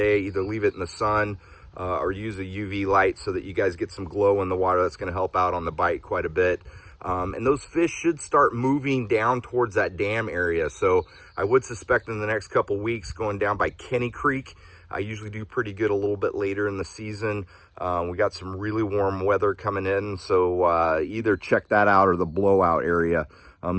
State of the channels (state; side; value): identical; both; correlation 1.00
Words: Either leave it in the sun or use a UV light so that you guys get some glow in the water. That's going to help out on the bite quite a bit. And those fish should start moving down towards that dam area. So I would suspect in the next couple weeks going down by Kenny Creek. I usually do pretty good a little bit later in the season. We got some really warm weather coming in, so either check that out or the blowout area.